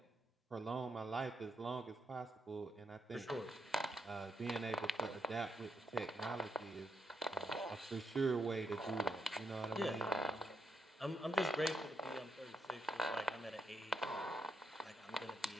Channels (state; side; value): normal; both; correlation 0.79